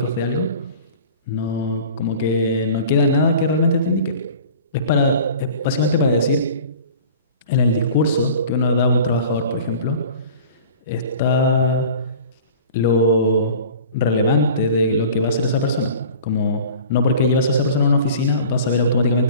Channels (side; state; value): both; inverted; correlation -0.42